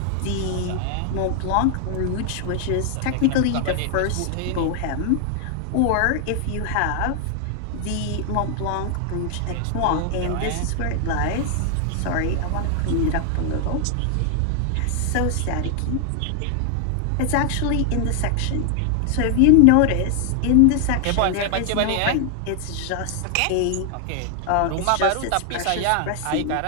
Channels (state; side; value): different; both; correlation 0.00